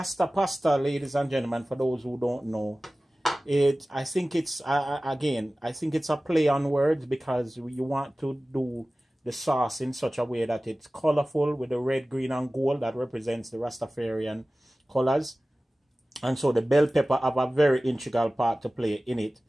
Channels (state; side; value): normal; both; correlation 0.97